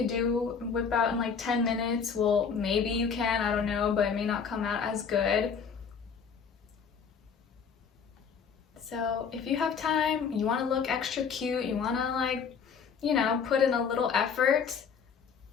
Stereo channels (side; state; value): right; quieter; 6.3 dB